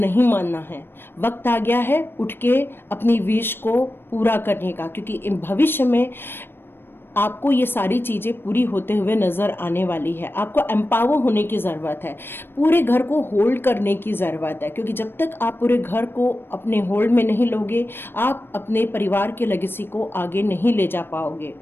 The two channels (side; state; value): right; late; 0.10 ms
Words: मानना है, वक्त आ गया है उठ के अपनी विश को पूरा करने का, क्योंकि भविष्य में आपको ये सारी चीज़ें पूरी होते हुए नज़र आने वाली है। आपको एम्पावर होने की ज़रूरत है, पूरे घर को होल्ड करने की ज़रूरत है, क्योंकि जब तक आप पूरे घर को अपने होल्ड में नहीं लोगे, आप अपने परिवार के लेगेसी को आगे नहीं ले जा पाओगे।